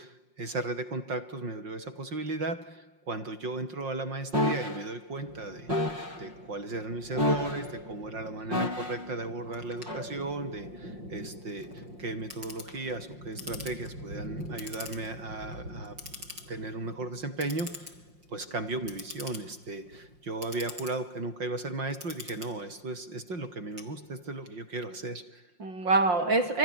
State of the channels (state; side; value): late; left; 5.6 ms